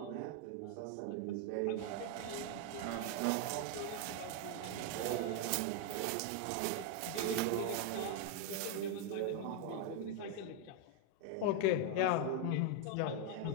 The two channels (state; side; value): different; both; correlation 0.01